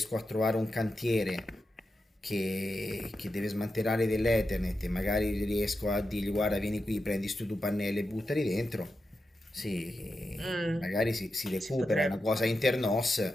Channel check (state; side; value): normal; both; correlation 0.89